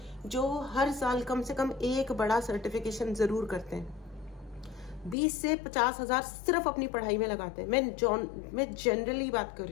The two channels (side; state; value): right; drops out; at 5.2 s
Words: जो हर साल कम से कम एक बड़ा सर्टिफिकेशन ज़रूर करते हैं, 20 से 50 हज़ार सिर्फ अपनी पढ़ाई में लगाते हैं। मैं जनरली बात कर